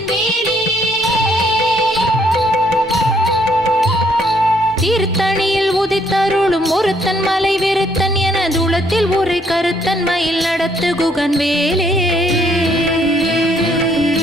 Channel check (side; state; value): both; normal; correlation 0.68